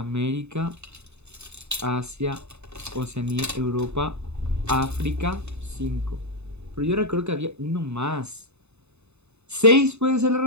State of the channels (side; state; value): left; late; 0.81 ms